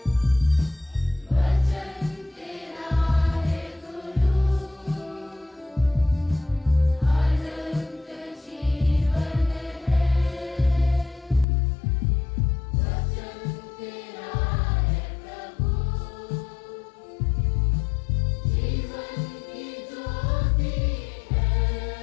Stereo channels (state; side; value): drops out; right; at 11.5 s